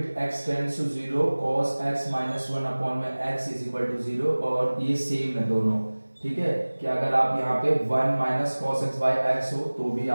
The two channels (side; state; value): both; inverted; correlation -1.00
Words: x tends to zero cos x minus 1 upon में x is equal to zero. और ये सेम है दोनों। ठीक है, कि अगर आप यहाँ पे 1 minus cos x by x हो तो भी